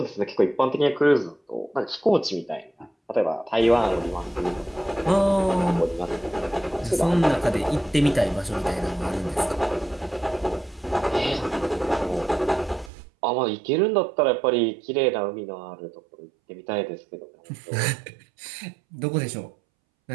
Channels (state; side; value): drops out; left; at 12.9 s